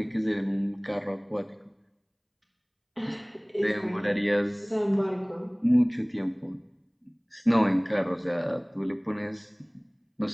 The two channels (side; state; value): both; identical; correlation 1.00